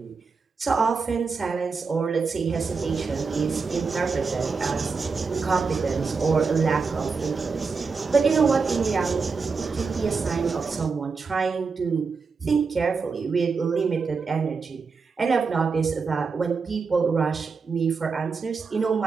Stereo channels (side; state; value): left; quieter; 4.9 dB